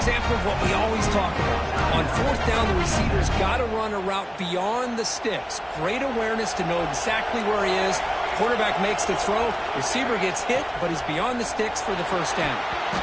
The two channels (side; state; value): both; identical; correlation 1.00